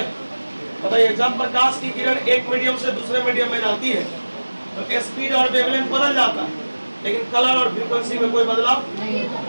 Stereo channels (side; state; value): both; inverted; correlation -1.00